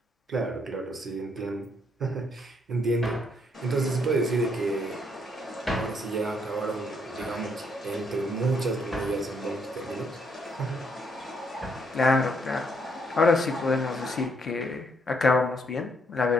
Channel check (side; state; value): both; normal; correlation 0.72